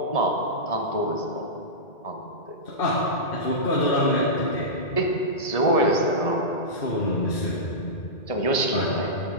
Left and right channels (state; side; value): late; right; 1.7 ms